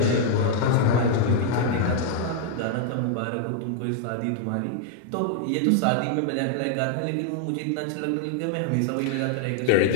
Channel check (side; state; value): both; different; correlation 0.00